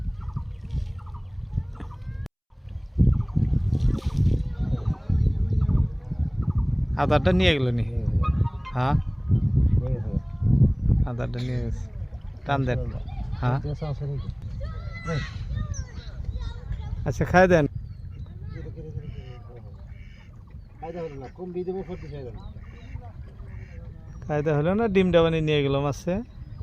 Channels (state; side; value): identical; both; correlation 1.00